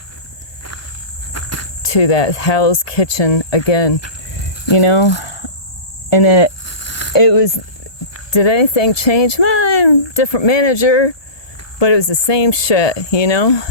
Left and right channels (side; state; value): right; late; 1.2 ms